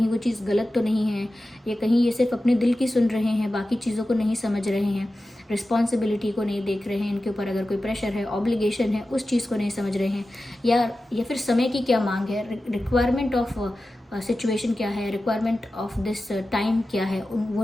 वो चीज़ गलत तो नहीं है, या कहीं ये सिर्फ अपने दिल की सुन रहे हैं, बाकी चीज़ों को नहीं समझ रहे हैं, रिस्पॉन्सिबिलिटी को नहीं देख रहे हैं, इनके ऊपर अगर कोई प्रेशर है, ऑब्लिगेशन है, उस चीज़ को नहीं समझ रहे हैं, या फिर समय की क्या मांग है, रिक्वायरमेंट ऑफ सिचुएशन क्या है, रिक्वायरमेंट ऑफ दिस टाइम क्या है, वो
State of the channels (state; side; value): normal; both; correlation 0.94